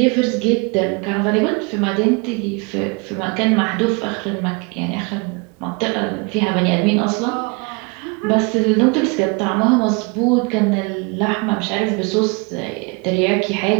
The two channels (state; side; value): quieter; left; 30.3 dB